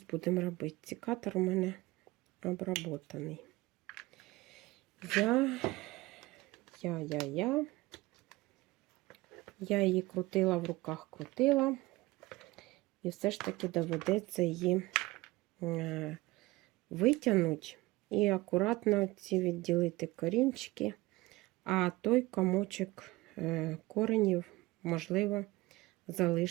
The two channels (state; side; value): quieter; left; 20.2 dB